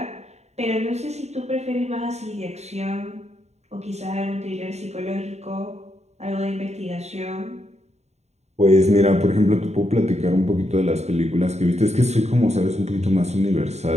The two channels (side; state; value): left; late; 0.32 ms